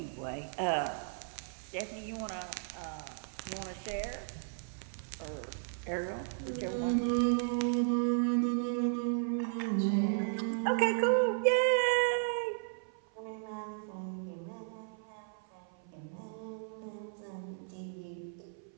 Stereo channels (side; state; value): left; silent; 54 dB below the other